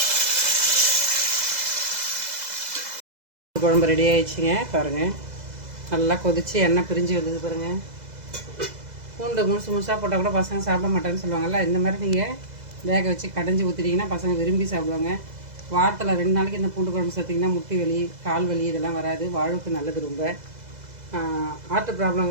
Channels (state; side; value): late; left; 2.0 ms